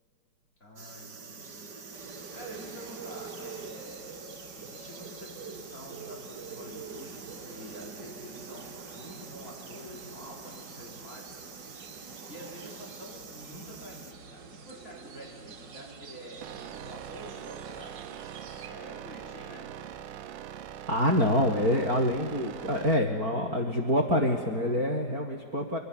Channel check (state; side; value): late; left; 5.0 ms